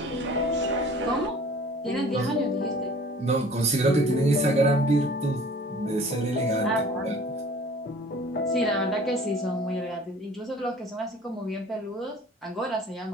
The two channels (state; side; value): normal; both; correlation 0.48